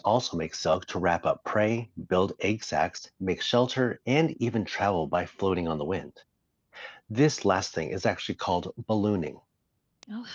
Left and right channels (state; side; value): identical; both; correlation 1.00